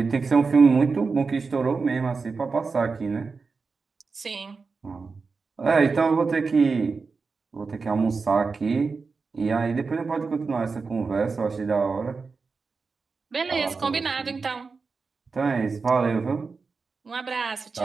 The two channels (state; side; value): quieter; left; 4.6 dB